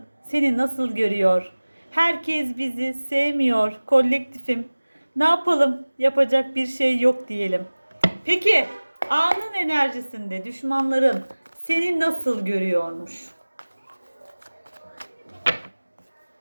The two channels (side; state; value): both; inverted; correlation -1.00